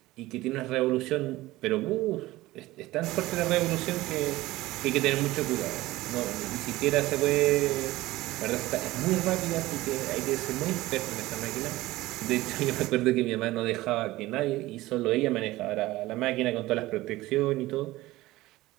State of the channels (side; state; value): left; quieter; 18.0 dB